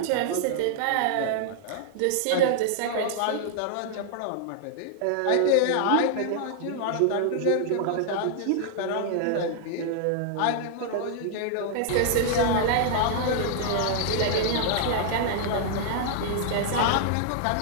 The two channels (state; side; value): different; both; correlation -0.01